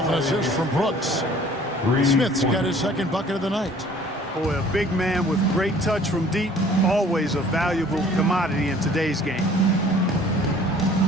an assist from Brooks. Smith's got his second bucket of the night. Boy, a big man with great touch from deep, always a valuable commodity in today's game.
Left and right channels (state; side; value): normal; both; correlation 0.53